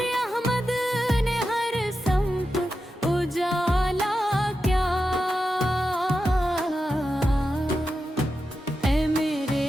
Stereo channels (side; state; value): both; normal; correlation 0.90